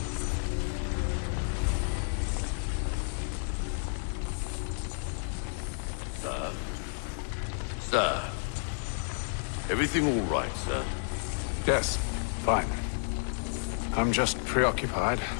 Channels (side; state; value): right; silent; digital silence